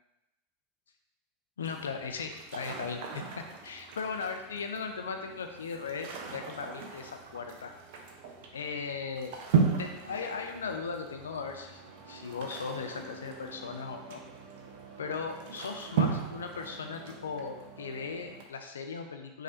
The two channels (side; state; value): both; inverted; correlation -0.34